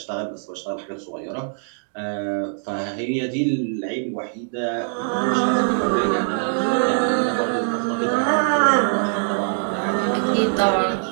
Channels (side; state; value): left; silent; digital silence